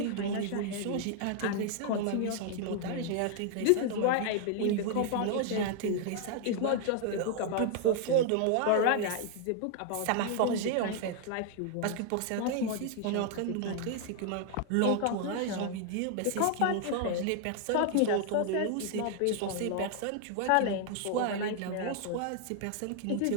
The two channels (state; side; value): different; both; correlation 0.00